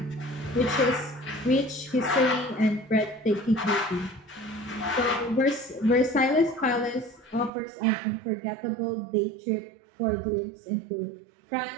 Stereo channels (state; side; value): drops out; left; at 7.5 s